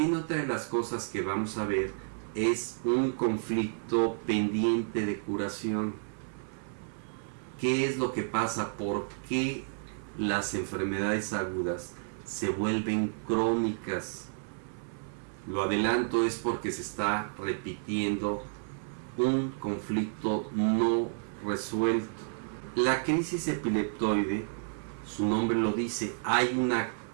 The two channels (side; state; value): left; silent; 57 dB below the other